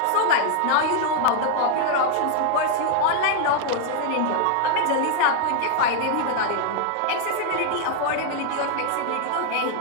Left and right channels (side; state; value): both; different; correlation 0.00